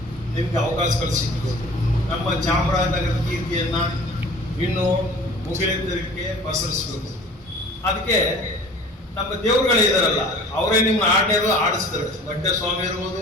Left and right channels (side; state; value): both; normal; correlation 0.45